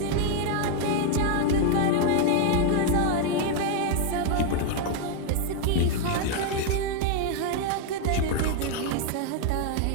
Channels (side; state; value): both; different; correlation 0.01